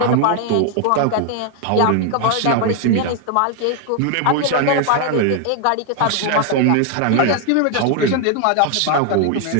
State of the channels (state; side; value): different; both; correlation 0.01